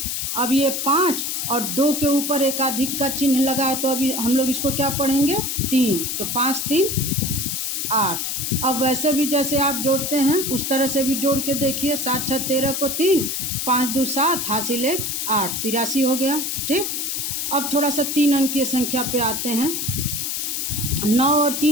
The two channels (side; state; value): left; noise; hiss, 2 dB below the sound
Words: अब ये 5 और 2 के ऊपर एकाधिक का चिन्ह लगा है तो अभी हम लोग इसको क्या पढ़ेंगे, 3। तो 5 3 8। अब वैसे भी जैसे आप जोड़ते हैं उस तरह से भी जोड़ के देखिए, 7 6 13 को 3, 5 2 7, हासिल 1 8, 83 हो गया। ठीक, अब थोड़ा सा 3 अंकीय संख्या पे आते हैं। 9 और